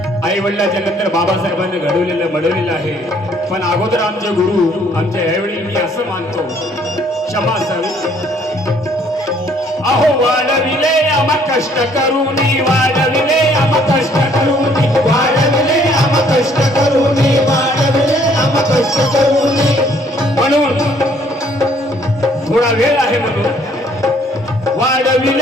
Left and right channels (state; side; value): normal; both; correlation 0.62